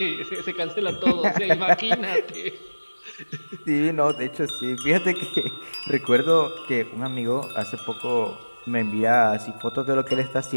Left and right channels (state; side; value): inverted; both; correlation -1.00